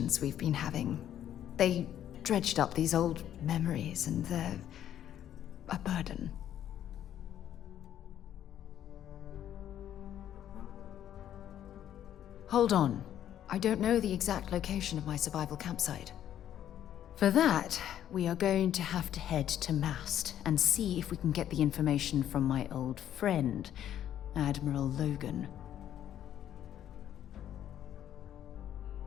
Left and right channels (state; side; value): quieter; right; 10.9 dB